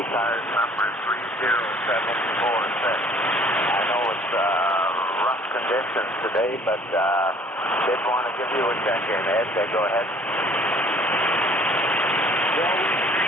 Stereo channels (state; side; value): normal; both; correlation 0.54